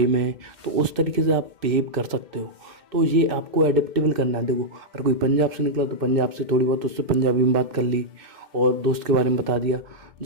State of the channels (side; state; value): left; late; 2.1 ms